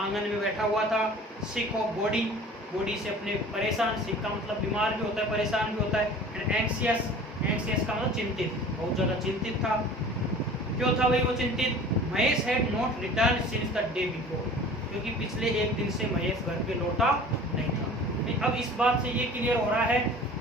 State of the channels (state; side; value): normal; both; correlation 0.44